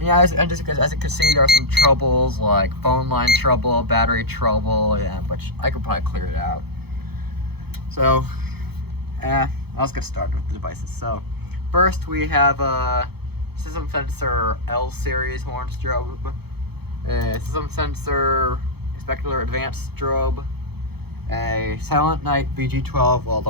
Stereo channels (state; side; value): late; left; 0.97 ms